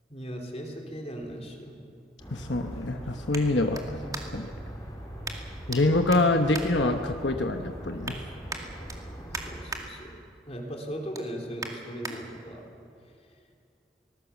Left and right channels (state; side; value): normal; both; correlation 0.45